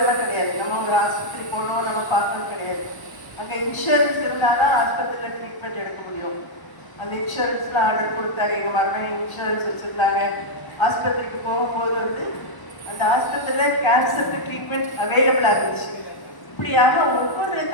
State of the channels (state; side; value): late; right; 1.0 ms